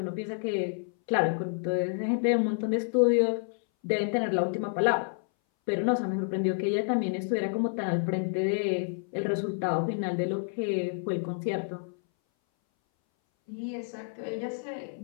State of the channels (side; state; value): right; silent; 58 dB below the other